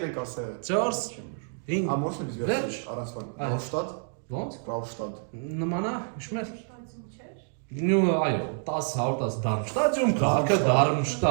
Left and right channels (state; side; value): silent; left; 59 dB below the other